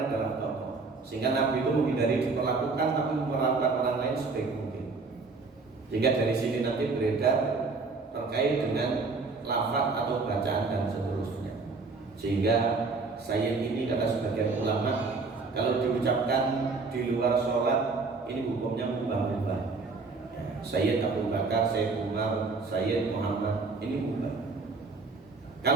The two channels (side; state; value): left; quieter; 4.1 dB